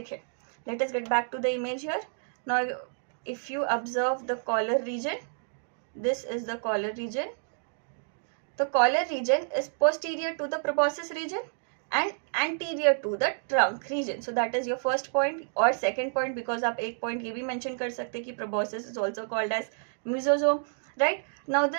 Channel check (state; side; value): silent; left; digital silence